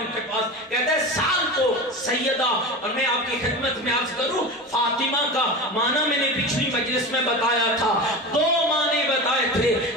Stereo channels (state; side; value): normal; both; correlation 0.28